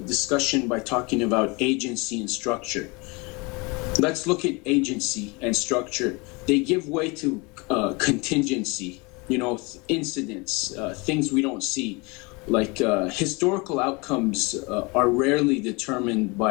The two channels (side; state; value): right; quieter; 27.6 dB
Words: discussion by talking about agency and structure. Let's look at agency and structure. They give way to contingency. Incidents, things we don't see, like historical outcomes are rarely determined